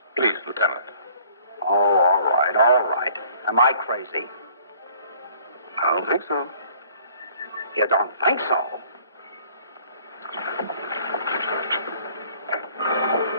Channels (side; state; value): both; inverted; correlation -0.56